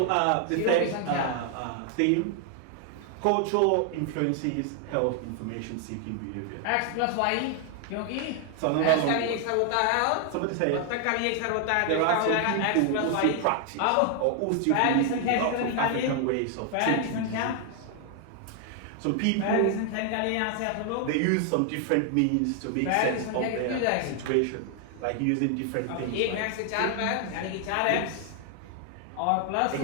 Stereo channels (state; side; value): different; both; correlation 0.00